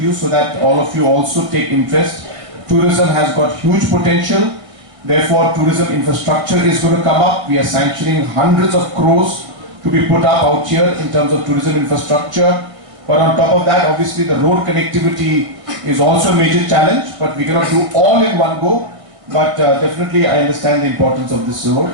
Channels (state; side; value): late; left; 1.6 ms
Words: so that all of you also take interest. Tourism has got huge potential. Therefore, tourism infrastructure is going to come up. We are sanctioning hundreds of crores to be put up out here in terms of tourism infrastructure. But on top of that, obviously the road connectivity is also a major challenge, but we cannot do all in one go. But definitely I understand the importance of this